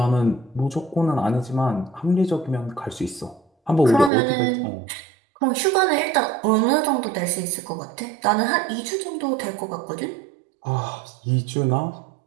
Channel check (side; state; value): left; drops out; at 4.1 s